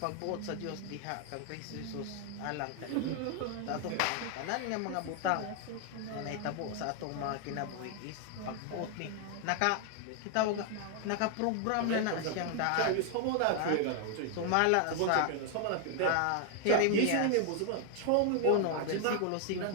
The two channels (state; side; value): different; both; correlation 0.00